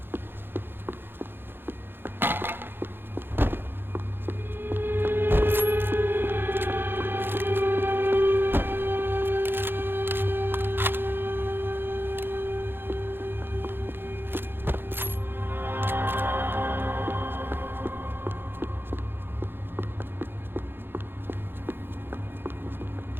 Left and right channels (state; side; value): late; left; 0.10 ms